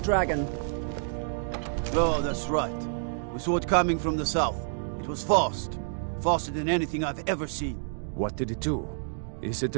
Oh, that's right. We saw it coming from the south. It was fast. Faster than anything I've ever seen. What did it do? Is it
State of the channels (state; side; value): silent; left; digital silence